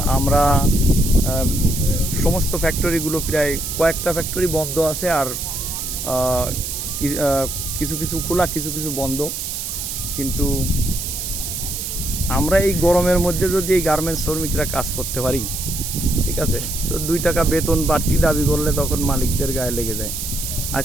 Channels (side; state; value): right; noise; hiss, 5 dB below the sound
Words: আমরা সমস্ত ফ্যাক্টরিগুলো প্রায় কয়েকটা ফ্যাক্টরি বন্ধ আছে, আর কিছু কিছু খোলা, কিছু কিছু বন্ধ। কিন্তু আমরা এই গরমের মধ্যে যদি এই গার্মেন্টস শ্রমিকরা কাজ করতে পারি, ঠিক আছে, তো 2 টাকা বেতন বাড়তি দাবি করলে তখন মালিকদের গায়ে লেগে যায়।